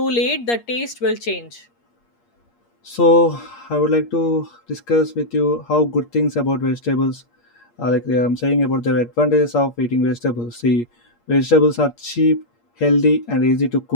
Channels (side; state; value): right; late; 8.5 ms